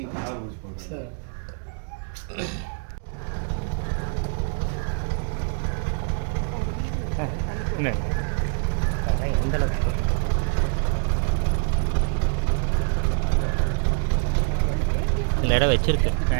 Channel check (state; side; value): silent; left; digital silence